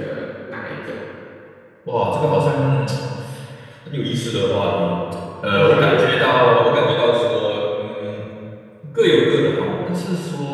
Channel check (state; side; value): identical; both; correlation 1.00